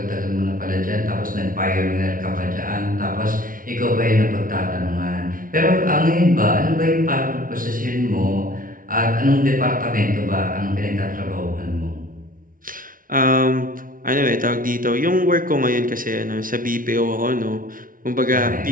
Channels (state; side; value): late; left; 0.40 ms